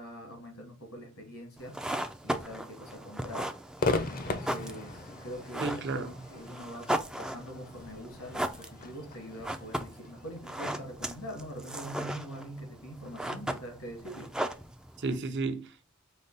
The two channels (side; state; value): both; normal; correlation 0.57